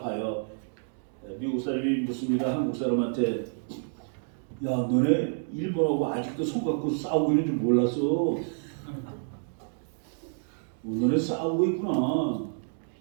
미국 사람이 묻습니다. 한국 사람한테 야 너네 일본하고 아직도 손 갖고 싸우고 있는 줄 몰랐어. 너네 싸우고 있구나.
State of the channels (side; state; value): left; silent; digital silence